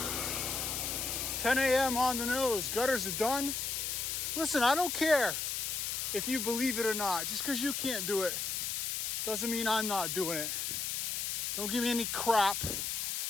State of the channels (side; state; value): left; noise; hiss, 1 dB below the sound